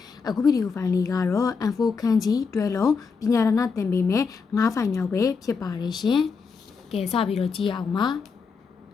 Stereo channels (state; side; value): quieter; right; 5.2 dB